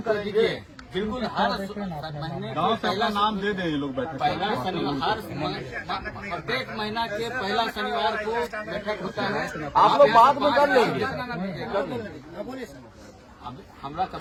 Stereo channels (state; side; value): identical; both; correlation 1.00